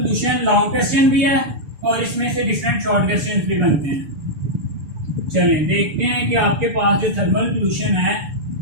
लॉन्ग क्वेश्चन भी है और इसमें से डिफरेंट शॉर्ट क्वेश्चन भी बनते हैं। चलें देखते हैं कि आपके पास जो थर्मल पोल्यूशन है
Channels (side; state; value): left; late; 6.9 ms